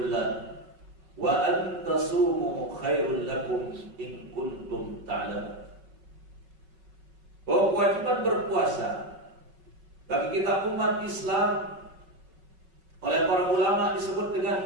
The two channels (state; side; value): late; left; 5.3 ms